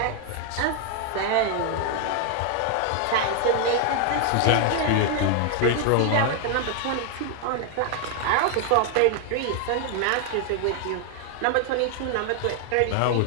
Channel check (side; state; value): both; different; correlation 0.00